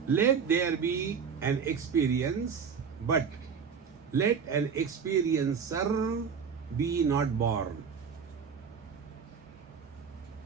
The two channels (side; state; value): left; quieter; 6.4 dB